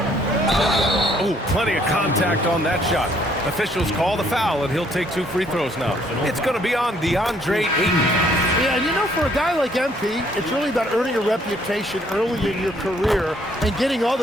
Oh, plenty of contact on that shot. Officials call the foul, and he'll take 2 free throws now. It's going to be on DeAndre Ayton. Yeah, and you know, for a guy like MP, it's really about earning a reputation early in your career and getting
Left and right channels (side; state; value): both; normal; correlation 0.65